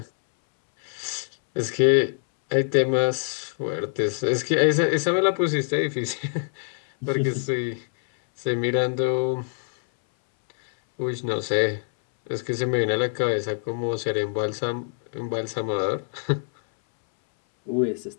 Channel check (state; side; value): silent; right; 62 dB below the other